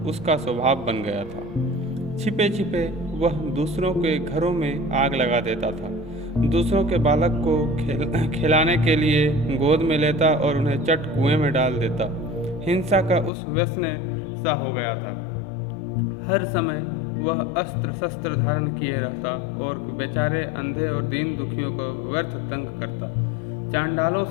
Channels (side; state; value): right; drops out; at 13.3 s